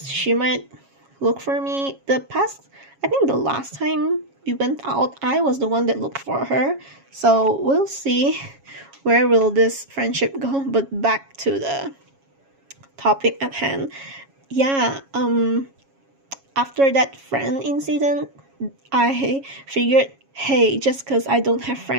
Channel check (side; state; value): left; late; 7.3 ms